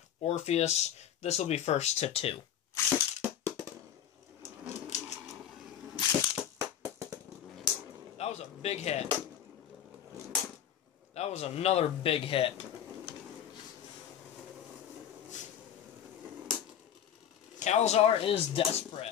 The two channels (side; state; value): right; quieter; 9.6 dB